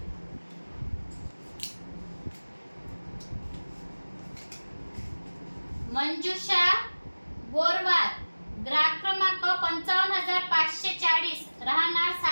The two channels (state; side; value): inverted; both; correlation -1.00